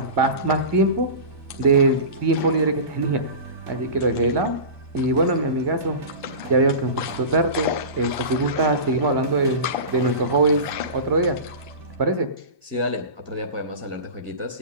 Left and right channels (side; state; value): left; late; 1.2 ms